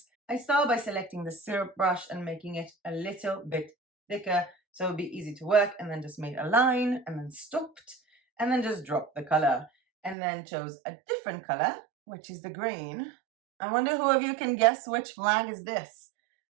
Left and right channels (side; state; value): left; drops out; at 10.2 s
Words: I started by selecting the syrup brush and making it a little bit thicker so it would be easy to work, and then just made a line and then stopped, and then just dropped the color, and then chose a different color, which is the green. I wonder who of you can guess which flag is this.